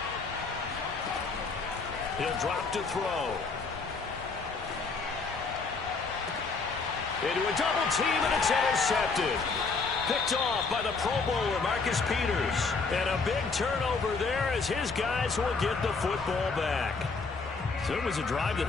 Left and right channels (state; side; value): quieter; right; 4.4 dB